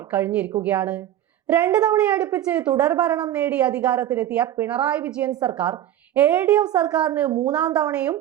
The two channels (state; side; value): quieter; left; 12.0 dB